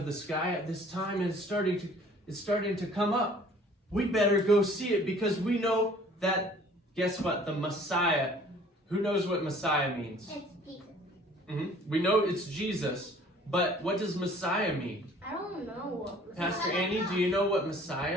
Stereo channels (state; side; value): normal; both; correlation 0.53